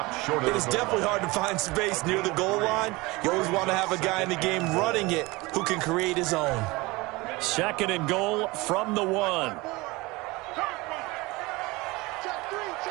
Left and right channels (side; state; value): left; quieter; 22.9 dB